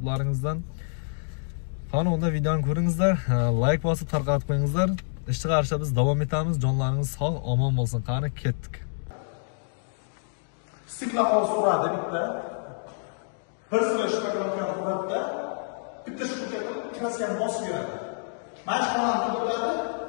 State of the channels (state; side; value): silent; right; digital silence